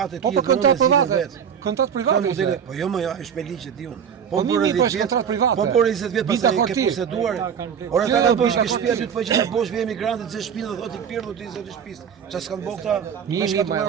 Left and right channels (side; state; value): left; quieter; 7.8 dB